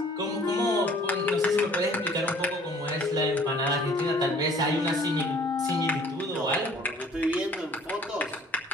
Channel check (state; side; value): normal; both; correlation 0.54